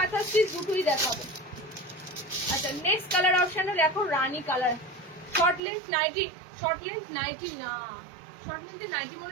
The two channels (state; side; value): drops out; left; at 5.6 s